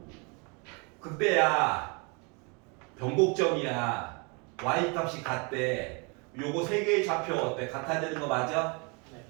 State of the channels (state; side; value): quieter; left; 31.2 dB